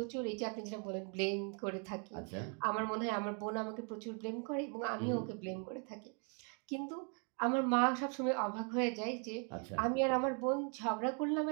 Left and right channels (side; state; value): left; quieter; 39.7 dB